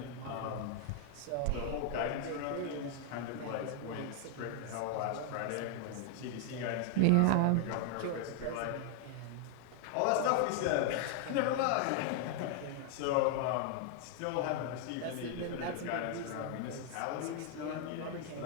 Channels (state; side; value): different; both; correlation 0.00